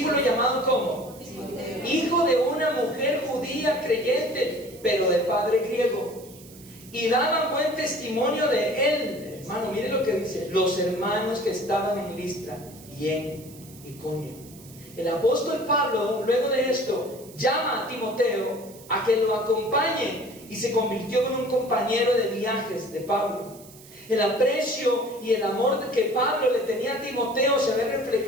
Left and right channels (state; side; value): noise; right; hiss, 21 dB below the sound